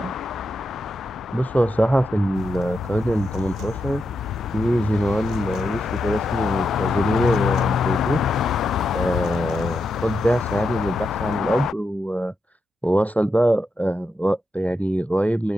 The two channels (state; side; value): normal; both; correlation 0.85